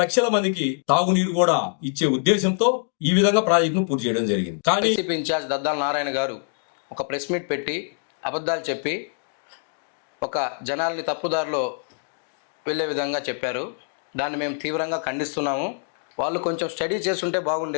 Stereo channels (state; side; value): silent; right; digital silence